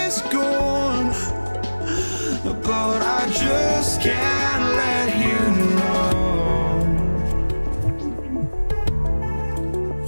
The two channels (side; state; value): both; inverted; correlation -1.00